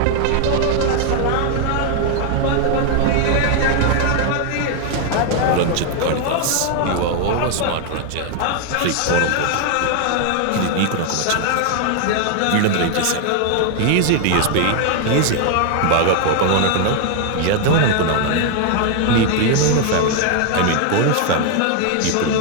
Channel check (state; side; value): different; both; correlation 0.00